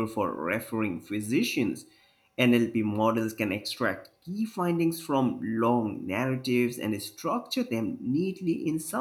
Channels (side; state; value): both; identical; correlation 1.00